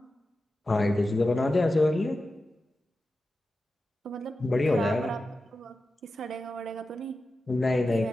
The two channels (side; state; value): both; normal; correlation 0.92